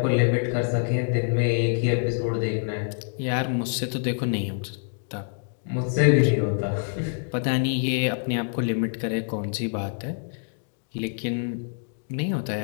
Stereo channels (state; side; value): silent; right; digital silence